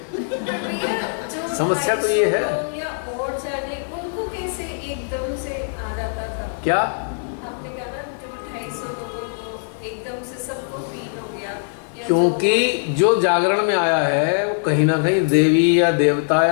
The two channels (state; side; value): silent; right; digital silence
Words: समस्या तो ये है। या और जाने उनको कैसे एकदम से आ जाता था? क्या आपने कहा ना जो 250 लोगों को एकदम से सबको फील हो गया, या क्योंकि जो जागरण में आया है वो कहीं ना कहीं देवी या देवता